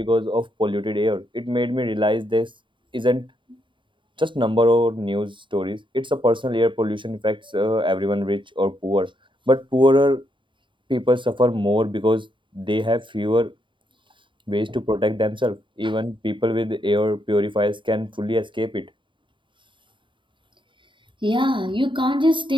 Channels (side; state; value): left; late; 0.24 ms